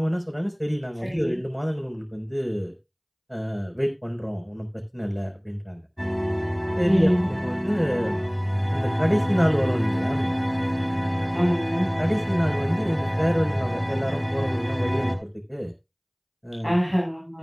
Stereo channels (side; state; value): both; identical; correlation 1.00